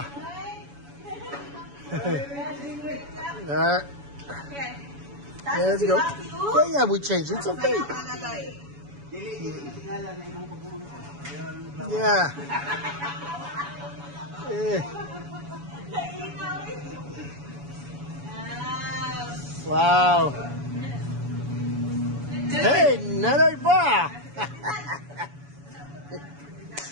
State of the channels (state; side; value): late; left; 7.1 ms